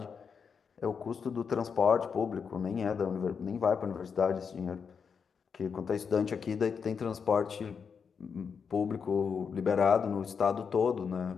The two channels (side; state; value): right; quieter; 6.2 dB